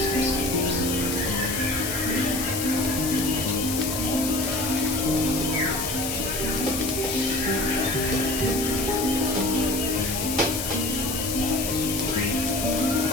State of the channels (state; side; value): noise; left; hiss, 3 dB below the sound